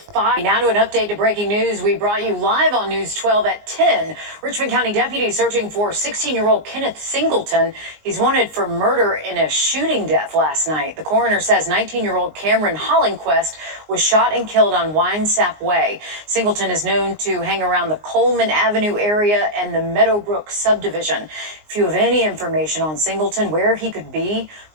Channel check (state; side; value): late; left; 19 ms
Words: 5. Now to an update to breaking news we brought you live on News 12 at 10. Richmond County deputies searching for 16-year-old Kenneth Singleton. He's wanted for murder in a shooting death last night. The coroner says 19-year-old Cameron Hollingquest was shot and killed on Winesap Way. Singleton is known to hang around the Coleman Avenue area and the Meadowbrook subdivision. If you have any information on Singleton, where he could be,